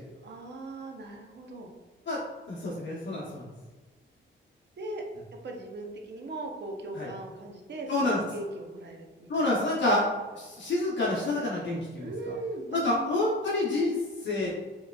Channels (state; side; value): normal; both; correlation 0.27